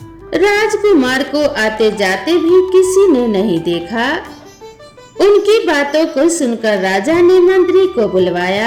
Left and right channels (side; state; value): both; identical; correlation 1.00